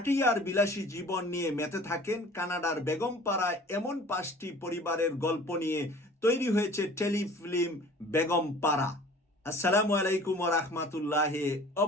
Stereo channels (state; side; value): normal; both; correlation 0.46